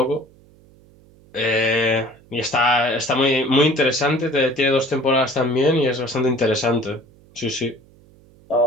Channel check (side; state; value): right; noise; hum, 28 dB below the sound